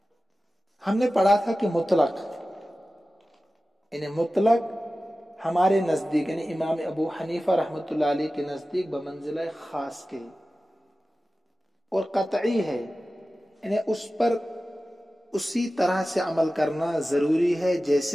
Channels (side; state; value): both; normal; correlation 0.95